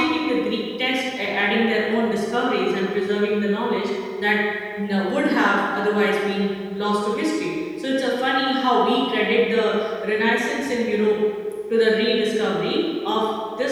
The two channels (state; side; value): identical; both; correlation 1.00